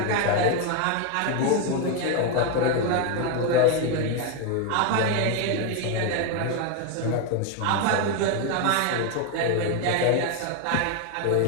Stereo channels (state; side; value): different; both; correlation 0.01